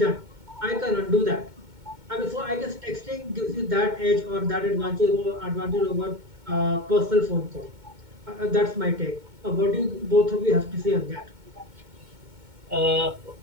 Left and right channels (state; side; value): late; left; 2.2 ms